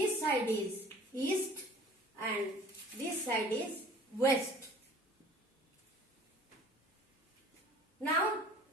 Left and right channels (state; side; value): normal; both; correlation 0.48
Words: side is east and this side is west. Now